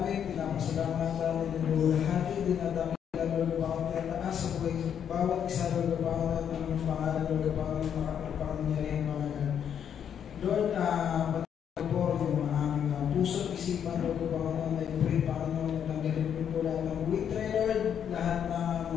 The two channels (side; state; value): right; quieter; 8.6 dB